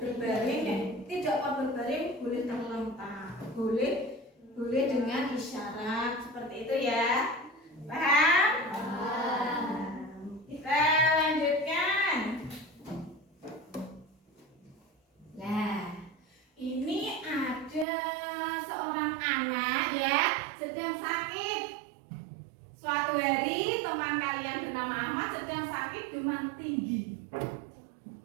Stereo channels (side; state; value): left; drops out; at 17.9 s